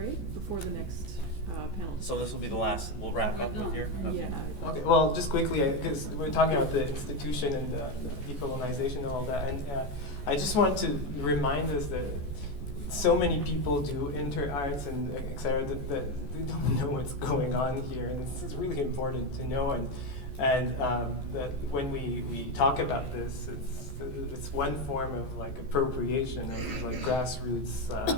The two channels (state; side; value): late; right; 14 ms